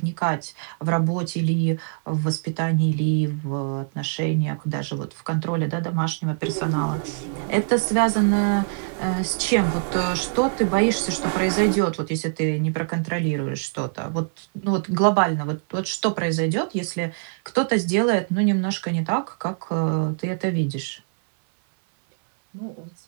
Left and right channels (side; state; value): left; silent; 58 dB below the other